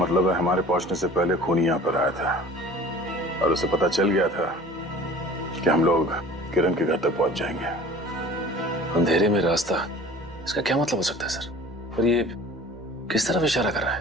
है हमारे पहुंचने से पहले खूनी यहां पर आया था और उसे पता चल गया था कि हम लोग किरण के घर तक पहुंच जाएंगे। अंधेरे में रास्ता, इसका क्या मतलब हो सकता है सर? और ये किस तरफ इशारा कर रहा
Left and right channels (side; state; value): both; normal; correlation 0.45